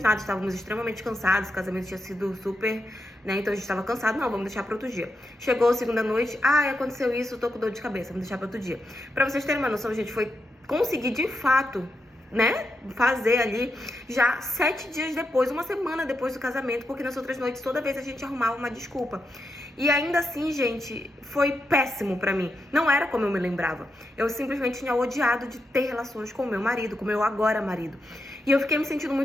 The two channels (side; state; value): both; normal; correlation 0.85